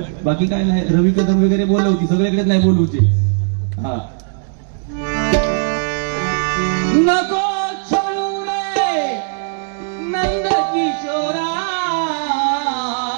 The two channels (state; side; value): silent; left; 66 dB below the other